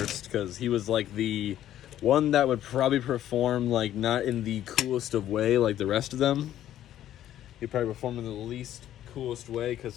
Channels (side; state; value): right; quieter; 12.0 dB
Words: because he was like the one that would probably perform like not in the coolest of way like the rest of them. He'd probably perform in the least coolest way